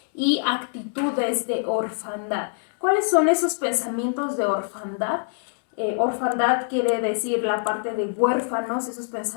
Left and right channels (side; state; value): right; silent; 62 dB below the other